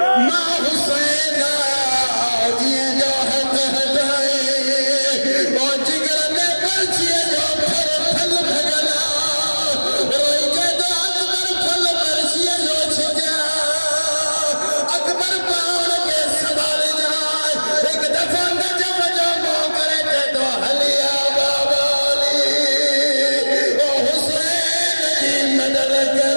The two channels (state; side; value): inverted; both; correlation -1.00